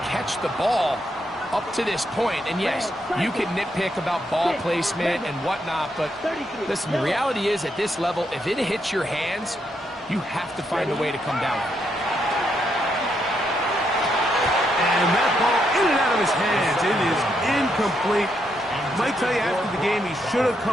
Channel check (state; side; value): normal; both; correlation 0.78